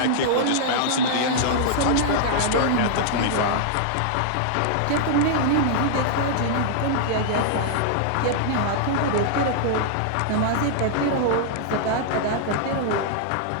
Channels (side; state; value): both; different; correlation -0.01